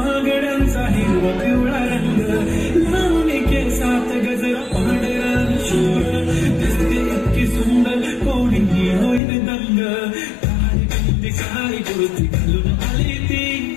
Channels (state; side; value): drops out; right; at 9.2 s